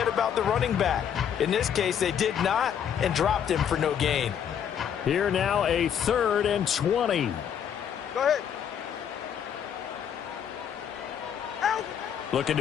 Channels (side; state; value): right; quieter; 8.6 dB